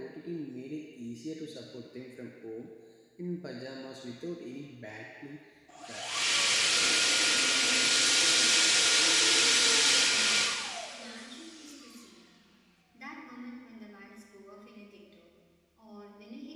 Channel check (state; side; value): identical; both; correlation 1.00